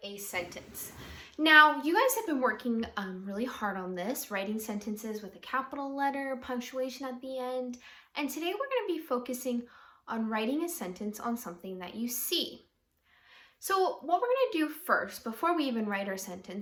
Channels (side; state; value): both; identical; correlation 1.00